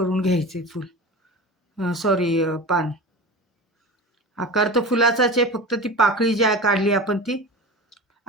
घ्यायचे फुल. पान. आकार तर फुलाचाच आहे, फक्त ती पाकळी जी काढली आपण ती.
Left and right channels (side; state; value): both; normal; correlation 0.31